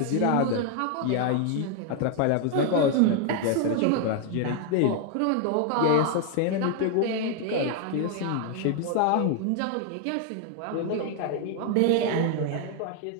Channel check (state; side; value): different; both; correlation 0.00